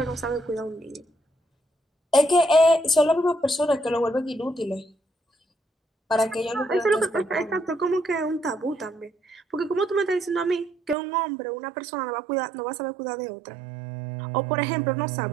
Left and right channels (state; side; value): drops out; left; at 11.0 s